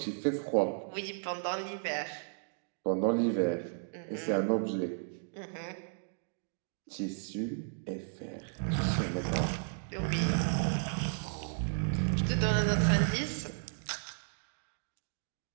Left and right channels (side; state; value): left; silent; digital silence